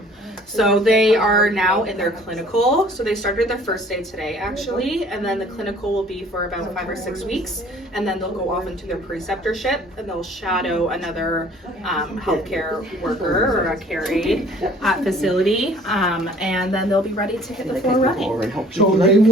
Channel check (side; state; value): both; normal; correlation 0.53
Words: So they are now in their clinical. So they started their first day today actually, and then the clinical will be for about 5 or 6 weeks, and then they'll go off into their preceptorship and they'll shadow another healthcare worker or a care aide at facility, and then they'll be ready to hit the floor running. So they